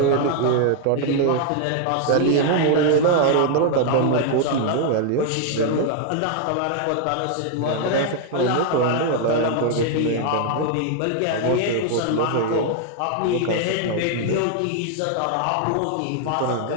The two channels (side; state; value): both; different; correlation 0.00